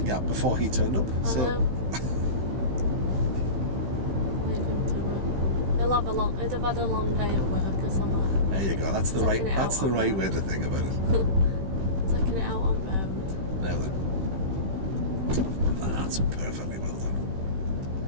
gap before he turned up. I know. Leave him to it. He'll have had a long day at work or something. There you go. That's the Taking right. it That's out the on right road. way to think about it. Taking it out on road. Now then, that's perfectly well done.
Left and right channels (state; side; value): late; left; 16 ms